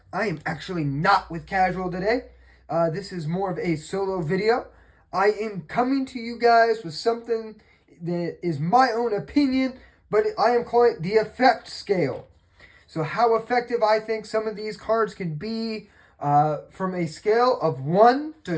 I am actually not with Casual today. This is more of a solo video. I am coming to you guys with something that is my own opinion, but I am calling it the effect scale. So how effective I think some of these cards can be from a scale of 1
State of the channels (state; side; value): identical; both; correlation 1.00